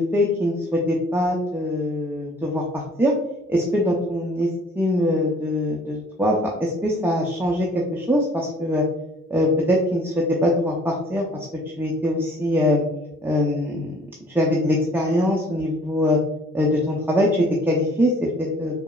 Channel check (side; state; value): both; normal; correlation 0.55